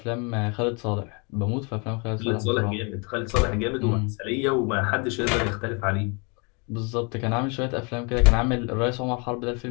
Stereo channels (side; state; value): right; quieter; 32.9 dB